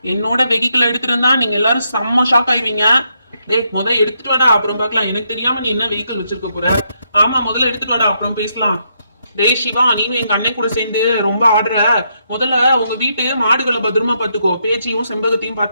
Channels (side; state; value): both; inverted; correlation -0.78